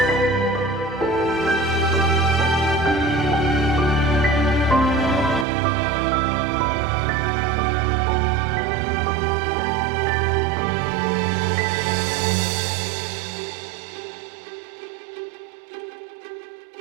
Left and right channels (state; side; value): drops out; left; at 5.5 s